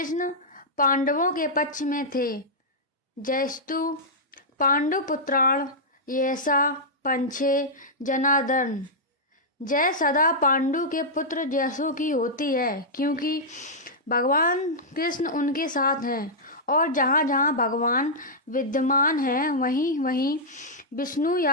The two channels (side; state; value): both; normal; correlation -0.09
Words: पांडवों के पक्ष में थे। जयस्तु पांडुपुत्राण यैसा पंछे जनार्दन। जय सदा पांडु के पुत्र जैसों की होती है, क्योंकि भगवान कृष्ण उनके साथ हैं और जहाँ जहाँ भगवान विद्यमान हैं वहीं वहीं विष्णु